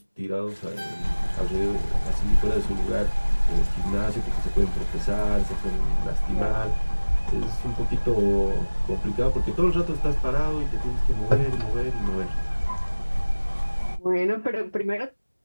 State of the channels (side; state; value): both; inverted; correlation -1.00